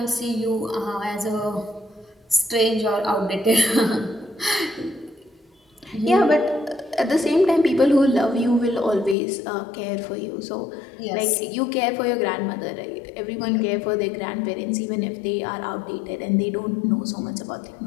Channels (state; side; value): drops out; right; at 9.2 s